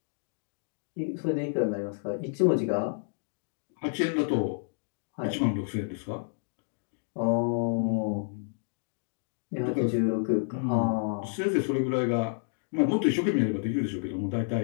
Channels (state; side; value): silent; right; digital silence